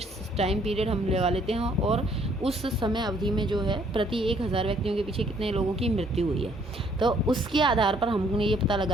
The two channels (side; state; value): both; normal; correlation 0.64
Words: टाइम पीरियड हम लगा लेते हैं और उस समय अवधि में जो है प्रति 1000 व्यक्तियों के पीछे कितने लोगों की मृत्यु हुई है। तो उसके आधार पर हमने ये पता